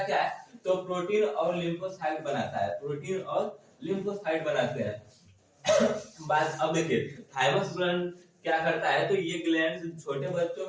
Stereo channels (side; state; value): both; identical; correlation 1.00